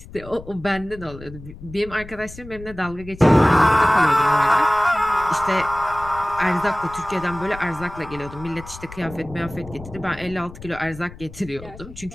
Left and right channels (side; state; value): left; noise; rumble, 16 dB below the sound